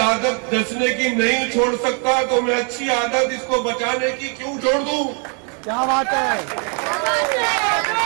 नचने की नहीं छोड़ सकता तो मैं अच्छी आदत इसको बचाने की क्यों छोड़ दूं। क्या बात है।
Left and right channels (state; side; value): quieter; left; 37.8 dB